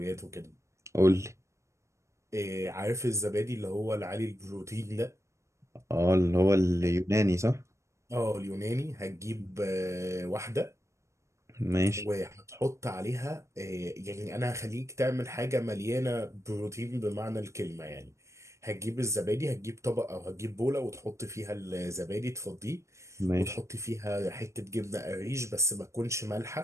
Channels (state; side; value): late; left; 0.14 ms